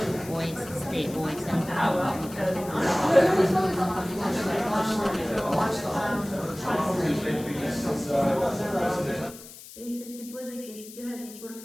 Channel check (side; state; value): left; noise; hiss, 16 dB below the sound